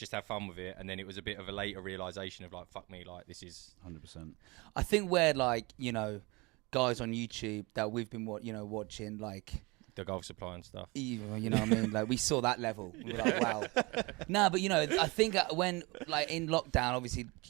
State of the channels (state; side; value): quieter; left; 25.6 dB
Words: have fun with it. And then it was a bit of a later realization of like, fuck me, like this is. 100%. I think we're like, you know, guys on YouTube that we've been watching, like, The golf supply and stuff. you know what I mean? Like, we saw that level. We were like, wow. No, but, you know, I think when, like, in lockdown, obviously,